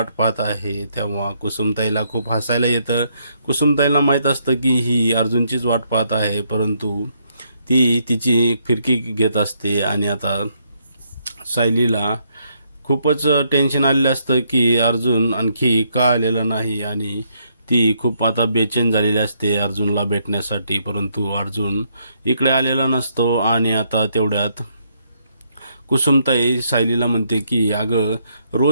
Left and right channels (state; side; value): inverted; both; correlation -0.73